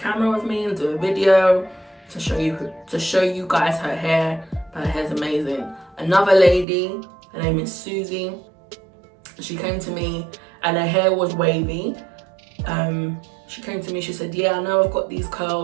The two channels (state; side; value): drops out; left; at 6.7 s